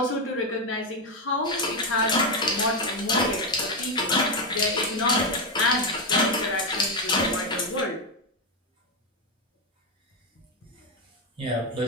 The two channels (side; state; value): both; normal; correlation 0.08